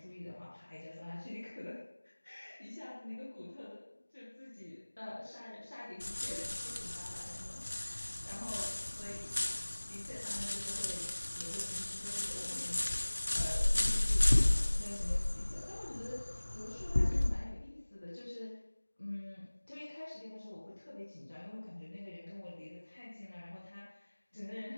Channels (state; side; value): inverted; both; correlation -1.00